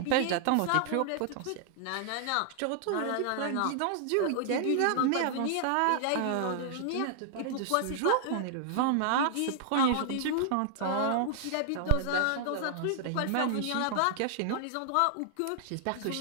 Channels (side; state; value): both; different; correlation 0.00